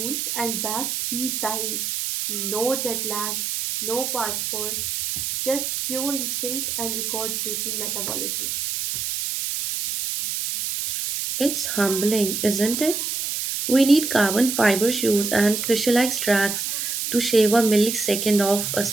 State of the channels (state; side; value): noise; right; hiss, 2 dB below the sound